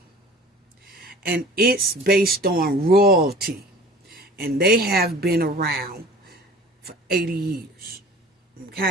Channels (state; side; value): normal; both; correlation 0.43